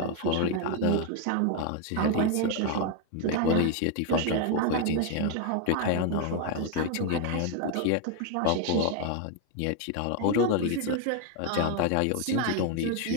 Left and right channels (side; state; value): both; different; correlation 0.01